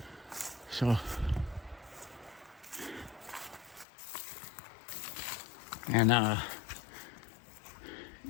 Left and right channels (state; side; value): drops out; right; at 3.9 s